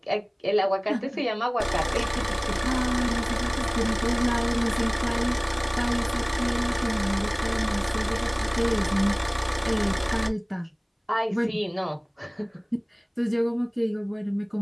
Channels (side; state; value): both; identical; correlation 1.00